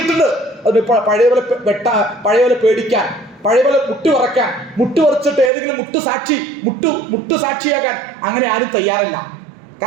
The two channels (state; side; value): drops out; left; at 5.5 s